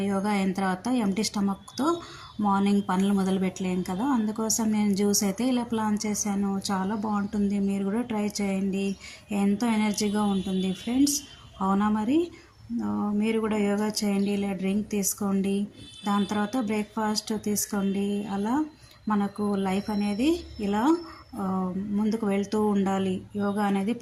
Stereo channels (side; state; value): both; identical; correlation 1.00